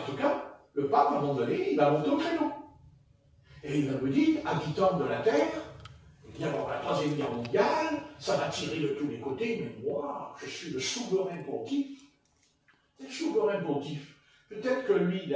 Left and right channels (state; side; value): identical; both; correlation 1.00